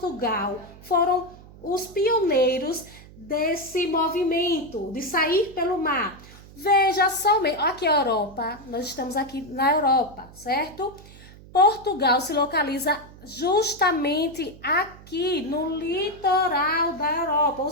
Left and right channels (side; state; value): right; noise; hum, 20 dB below the sound